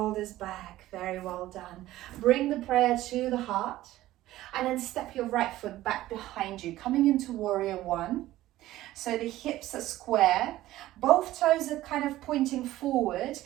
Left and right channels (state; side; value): quieter; left; 15.4 dB